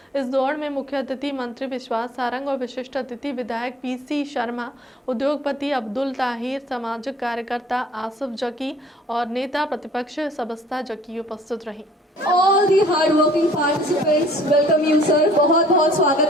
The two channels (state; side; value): normal; both; correlation 0.55